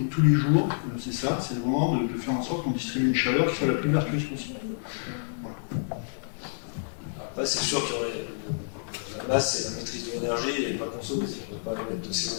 tous les jours, c'est ça, c'est vraiment de faire en sorte qu'on distribue une chaleur qui soit la plus vertueuse possible. Voilà. Après, c'est sûr que la base, c'est la maîtrise de l'énergie et pas consommer. Si on ne veut pas émettre de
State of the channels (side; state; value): right; silent; digital silence